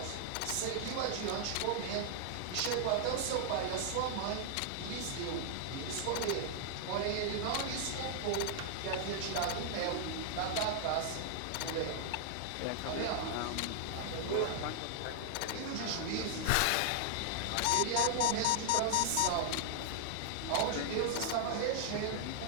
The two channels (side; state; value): both; different; correlation 0.00